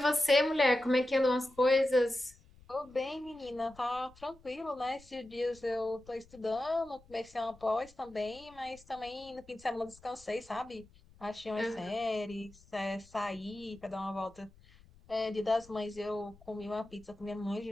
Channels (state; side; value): noise; left; rumble, 25 dB below the sound